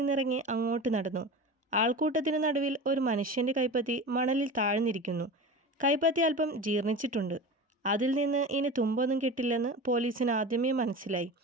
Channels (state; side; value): normal; both; correlation 0.31